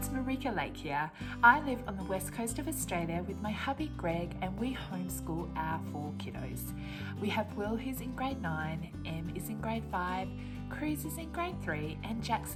Marika Lake here. I live on the west coast of Australia with my hubby Greg, and we homeschool our 4 kiddos. We have Will, who's in grade 9, Em is in grade 5, Cruz is in grade 3, and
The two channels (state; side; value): identical; both; correlation 1.00